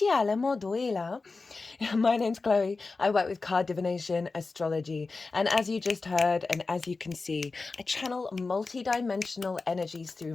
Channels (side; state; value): right; quieter; 4.0 dB